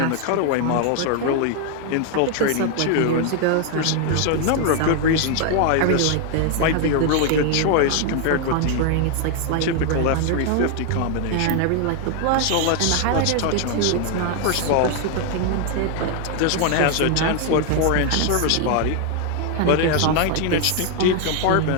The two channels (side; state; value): both; different; correlation 0.00